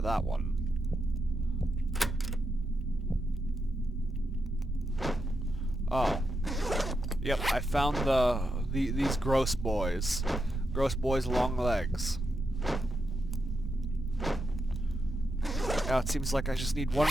that one. Oh. Yep, I found these gross boys. Gross boys, long legs. Now it seems like I just need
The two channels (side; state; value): both; normal; correlation 0.85